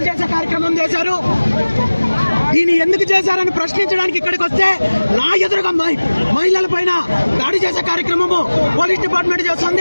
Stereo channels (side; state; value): both; inverted; correlation -1.00